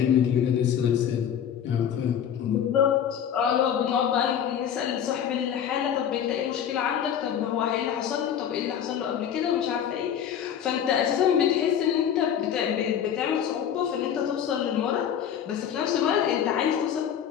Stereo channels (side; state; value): right; quieter; 9.0 dB